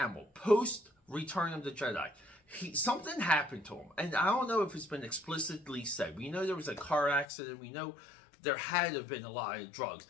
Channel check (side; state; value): right; drops out; at 7.2 s